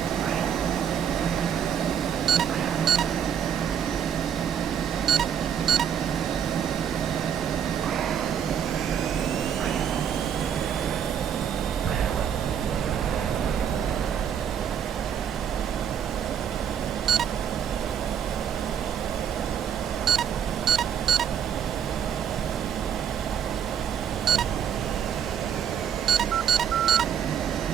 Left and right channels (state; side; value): quieter; left; 8.5 dB